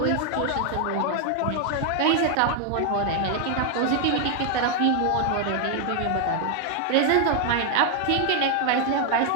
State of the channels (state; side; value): different; both; correlation 0.00